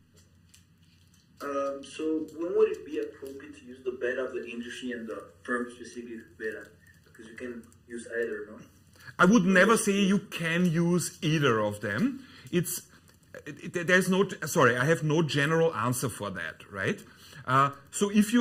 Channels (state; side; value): identical; both; correlation 1.00